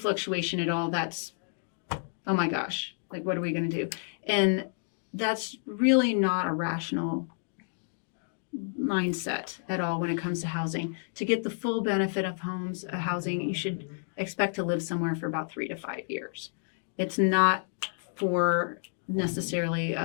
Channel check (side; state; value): right; silent; digital silence